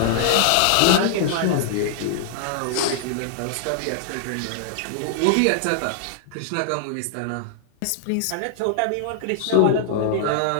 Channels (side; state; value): both; different; correlation -0.01